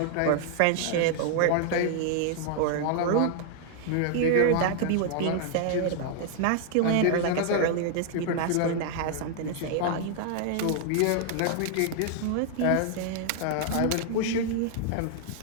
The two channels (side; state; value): both; different; correlation 0.00